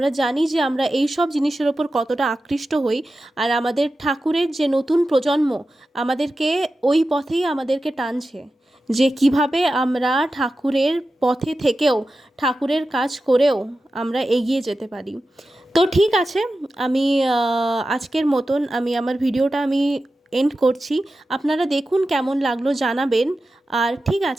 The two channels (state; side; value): normal; both; correlation 0.93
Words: জানি যে আমরা এই সব জিনিসের ওপর কতটা আকৃষ্ট হই। আর আমাদের ঠাকুরের যে নতুন প্রজন্ম আমাদেরকে ওই পথেই আমাদেরকে টানছে, যে কিভাবে আমরা ঠাকুরের পথে থেকেও ঠাকুরের কাজ করেও আমরা এগিয়ে যেতে পারি। তো ঠিক আছে, আমি আজকের মতন আমি আমার ভিডিওটা এন্ড করছি। আপনারা দেখুন কেমন লাগলো জানাবেন। আর ঠিক